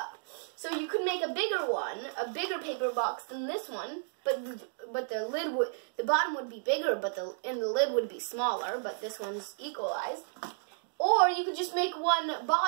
So you could make a bigger one, a bigger paper box than this one, but the bottom would be bigger, but the lid would be smaller, but this one's equalized. Or you could just make one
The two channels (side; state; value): left; silent; digital silence